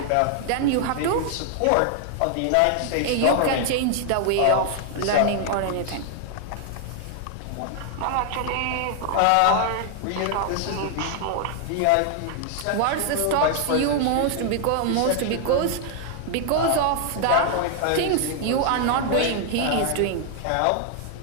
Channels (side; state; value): both; different; correlation 0.00